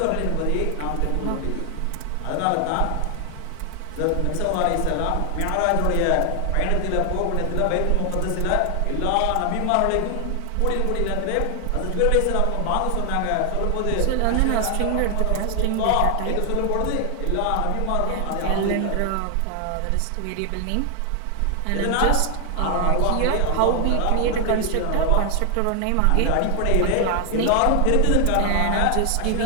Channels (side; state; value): both; different; correlation 0.00